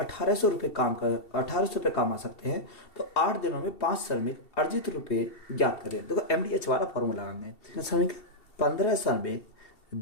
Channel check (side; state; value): right; late; 2.7 ms